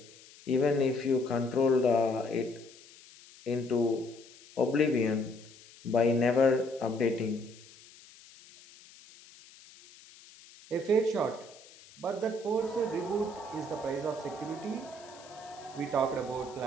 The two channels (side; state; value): left; noise; hiss, 22 dB below the sound